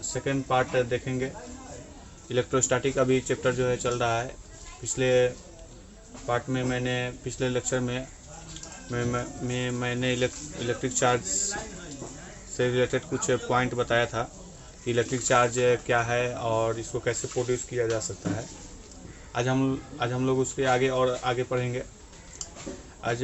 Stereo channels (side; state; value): both; identical; correlation 1.00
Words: part देखेंगे। इलेक्ट्रोस्टैटिक अभी चैप्टर जो है चल रहा है। पिछले पार्ट में पिछले लेक्चर में मैंने इलेक्ट्रिक चार्ज से रिलेटेड कुछ पॉइंट बताया था कि इलेक्ट्रिक चार्ज क्या है और इसको कैसे प्रोड्यूस किया जा सकता है। आज हम लोग उसके आगे पढ़ेंगे। आज